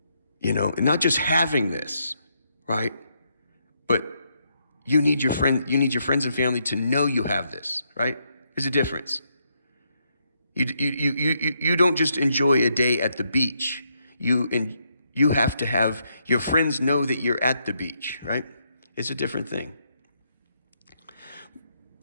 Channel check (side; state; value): both; inverted; correlation -0.77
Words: not just having this, right? But you need your friends and family to know you have this, right? There's a difference. You don't just enjoy a day at the beach. You have to have your friends know that you're at the beach, right? It's a different thing.